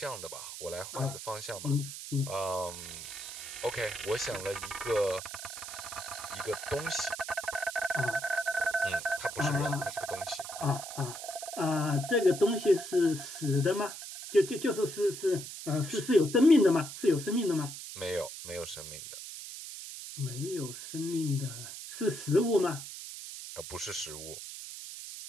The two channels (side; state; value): right; noise; hiss, 10 dB below the sound